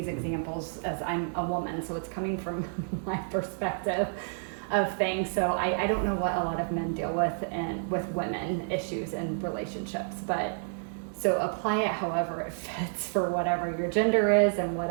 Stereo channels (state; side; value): silent; left; 58 dB below the other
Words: examples as I'm a woman, so it's coming from my perspective of things. So I don't know what a lot of men deal with, and with women issues in relationships, but so apply it however it fits for whatever your gender is and